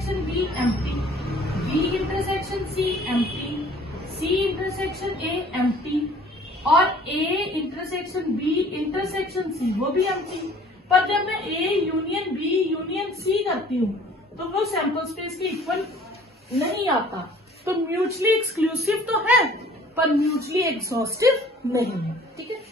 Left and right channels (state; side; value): normal; both; correlation 0.52